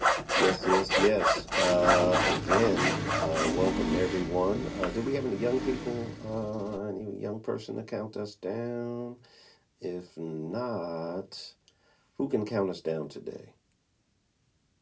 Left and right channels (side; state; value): both; identical; correlation 1.00